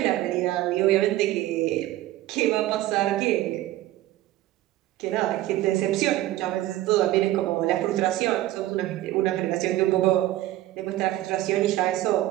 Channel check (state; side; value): quieter; left; 15.4 dB